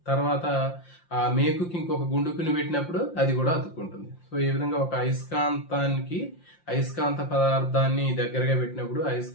తర్వాత ఆ మేకుకి ఇంకొక గుండుకుని పెట్టినప్పుడు అది కూడా అతుక్కుంటుంది. సో ఈ విధంగా ఒక అయస్కాంతానికి అయస్కాంత పదార్థాన్ని దగ్గరగా పెట్టినప్పుడు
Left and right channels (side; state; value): right; late; 5.7 ms